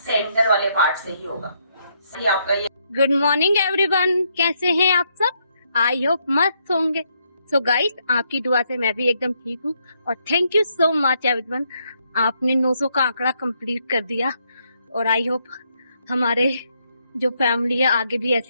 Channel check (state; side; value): inverted; both; correlation -0.75